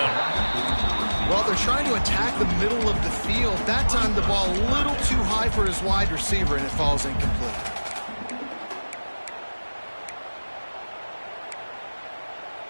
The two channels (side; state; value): both; inverted; correlation -1.00